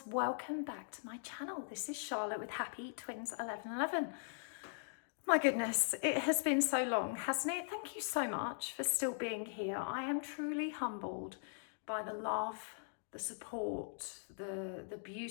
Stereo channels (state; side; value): silent; right; digital silence